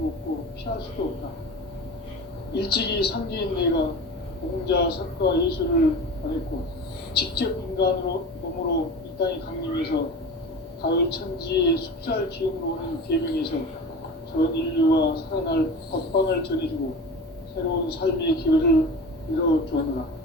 없고 피할 수도 없다. 일찍이 상제인 내가 공자, 석가, 예수를 보냈고 직접 인간으로 몸으로 이 땅에 강림해서 가을 천지의 숲살 기운으로 오는 계명에서 전 인류와 살아날 법방을 전해주고 새로운 삶의 기회를 이뤄주었노라.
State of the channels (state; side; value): normal; both; correlation 0.33